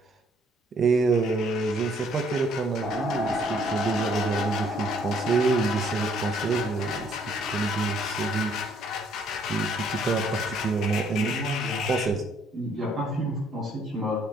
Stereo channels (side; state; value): both; normal; correlation 0.64